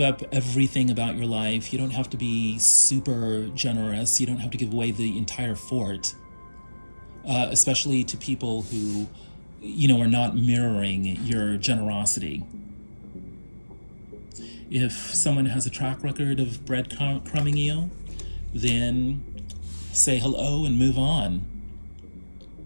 everything about your life. You don't have to be super generous. You don't have to give away the entire fort, especially to people who, are not mirroring your generosity. If someone has a track record of breadcrumbing you, then say hello and move on.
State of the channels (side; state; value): both; inverted; correlation -1.00